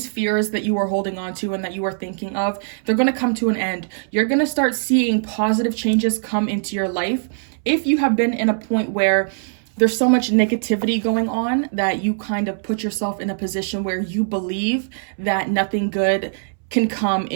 fears that you are holding on to and that you are thinking of, they're going to come to an end. You're going to start seeing positive changes come into your life. If you have been in a point where there's so much negativity going on that you kind of put yourself in a position where you believe that nothing good can come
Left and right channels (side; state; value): left; silent; 65 dB below the other